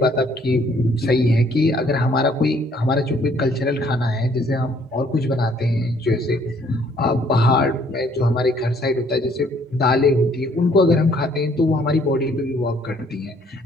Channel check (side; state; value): both; normal; correlation 0.63